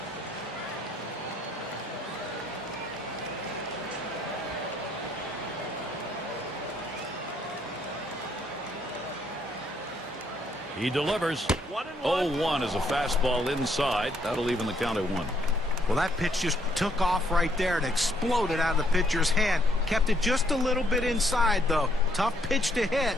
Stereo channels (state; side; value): normal; both; correlation 0.69